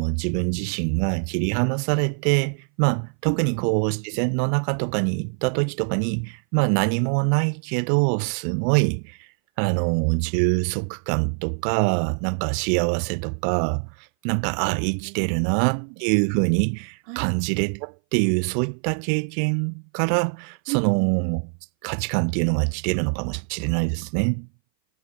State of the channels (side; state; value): left; silent; 59 dB below the other